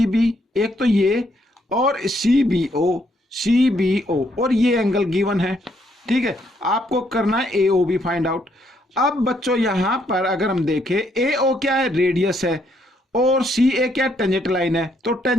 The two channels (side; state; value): both; normal; correlation 0.72